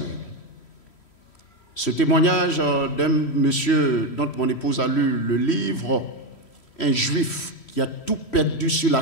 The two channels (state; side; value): late; right; 3.1 ms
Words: Ce témoignage d'un monsieur dont mon épouse a lu le livre, un juif qui a tout perdu sur